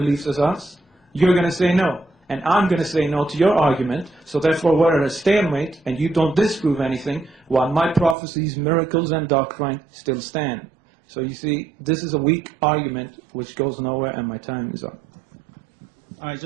as us? You're going to say no. and I'm going to say no to your argument, so therefore we're at a stalemate, and you don't disprove anything, while my prophecies, miracles, and doctrine still stand. So you see, this is a weak argument which goes nowhere, and my time is up. All right,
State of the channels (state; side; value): drops out; left; at 8.2 s